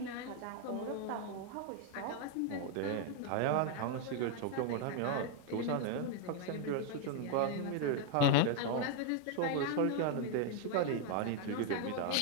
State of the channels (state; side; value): different; both; correlation 0.00